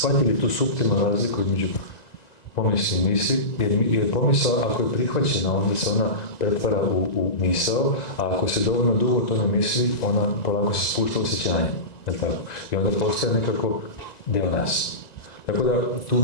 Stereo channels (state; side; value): late; right; 1.9 ms